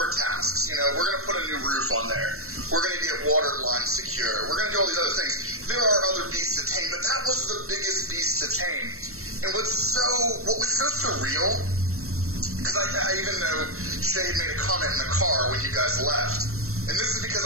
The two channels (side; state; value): left; late; 0.63 ms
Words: tasks. We're going to put a new roof on there. We're going to get water lines secure. We're going to do all these other things. There are other beasts to tame, but that was the biggest beast to tame. And what was so surreal, because I even know Shay made a comment in the car when you guys left, and this is because